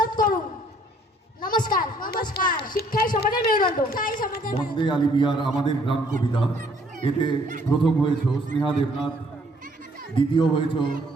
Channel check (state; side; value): normal; both; correlation 0.63